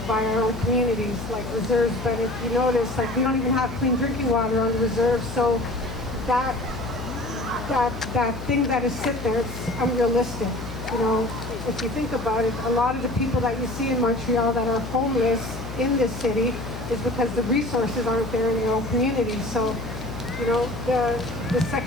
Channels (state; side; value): noise; left; hum, 9 dB below the sound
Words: by our own communities, like reserves. But if you notice, we don't even have clean drinking water on the reserves, so that thing that is sit there, it's unrealistic. If you think about it, a lot of the people that you see in Montreal that are homeless in this city is because the resources aren't there in their own communities. So, the